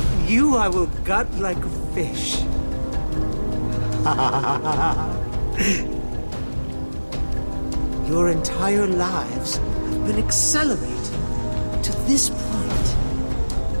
You I will gut like a fish. Your entire lives have been accelerated to this point.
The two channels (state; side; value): inverted; both; correlation -1.00